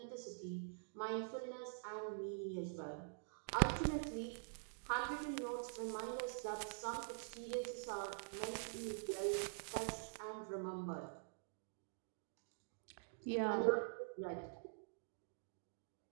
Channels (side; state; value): left; silent; digital silence